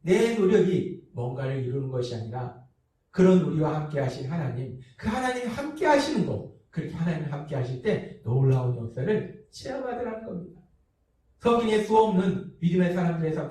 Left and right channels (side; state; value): both; identical; correlation 1.00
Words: 내 노력이 뭔가를 이루는 것이 아니라 그런 우리와 함께 하신 하나님, 그 하나님이 함께 하시는 것, 그렇게 하나님 함께 하실 때 놀라운 역사를 체험하더라는 겁니다. 성경에 수없는 믿음의 사람들의 삶